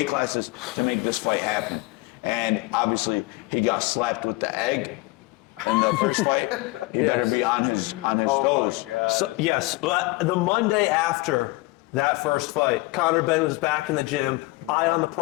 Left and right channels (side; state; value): right; quieter; 22.9 dB